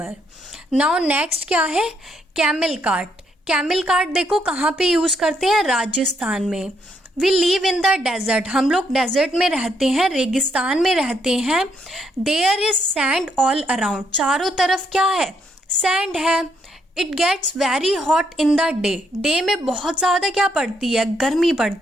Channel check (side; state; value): both; normal; correlation 0.74